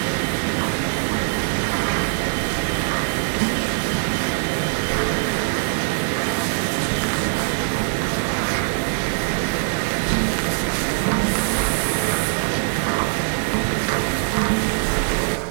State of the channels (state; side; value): silent; left; digital silence